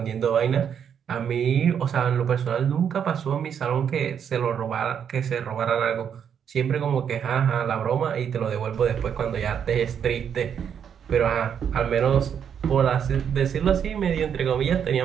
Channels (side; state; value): left; quieter; 8.1 dB